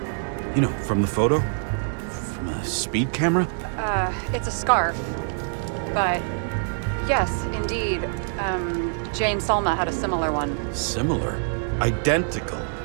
You know, from the photo? From a speed camera? It's a scarf. But, yes, indeed. Jane Salma had a similar one. Similar? Identical?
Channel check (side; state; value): left; silent; digital silence